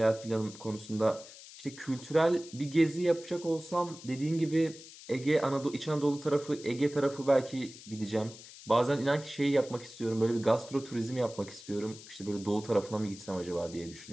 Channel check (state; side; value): noise; left; hiss, 17 dB below the sound